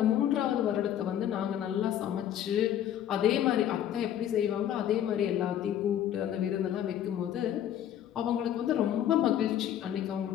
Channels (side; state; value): right; quieter; 10.7 dB